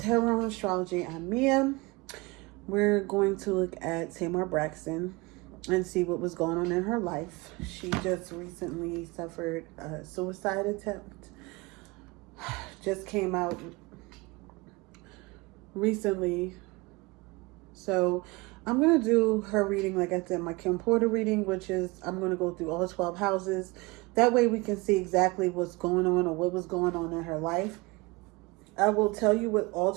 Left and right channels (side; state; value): left; quieter; 24.7 dB